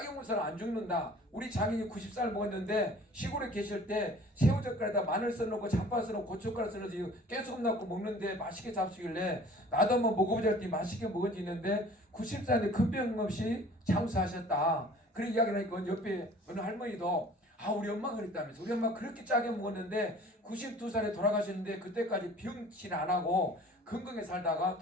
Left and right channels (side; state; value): both; normal; correlation 0.48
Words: 먹어서는 안 죽는다. 우리 장인이 90살 먹었는데 시골에 계실 때 새우젓갈에다 마늘 써놓고 잡파 써놓고 고춧가루 써놓고 깨소금 넣고 먹는데 맛있게 잡수길래 나도 한번 먹어보자 했더니 맛있게 먹어지는데 90살인데 큰 병 없이 장수하셨다. 그런 이야기를 하니까 옆에 어느 할머니도 우리 엄마가 그랬다면서 우리 엄마 그렇게 짜게 먹었는데 92살에 돌아가셨는데 그때까지 병치를 안 하고 건강하게 살다가